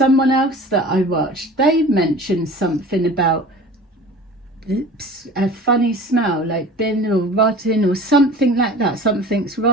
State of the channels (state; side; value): normal; both; correlation 0.40